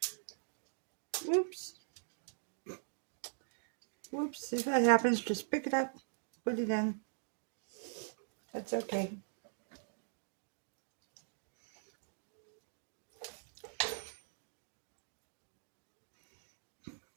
Oops. Whoops, if that happens, just pick it up, put it in. That's okay.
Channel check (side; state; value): left; silent; digital silence